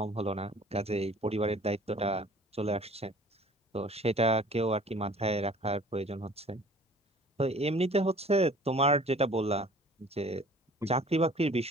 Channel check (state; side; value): normal; both; correlation 0.49